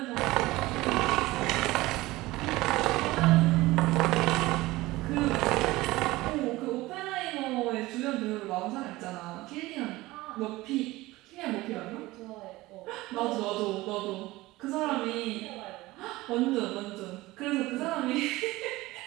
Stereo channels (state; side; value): quieter; left; 19.2 dB